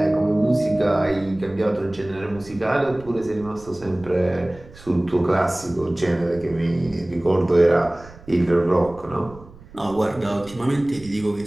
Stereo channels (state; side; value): noise; right; rumble, 20 dB below the sound